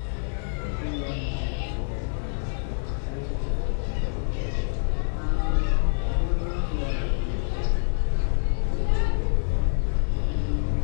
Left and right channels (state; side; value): silent; right; digital silence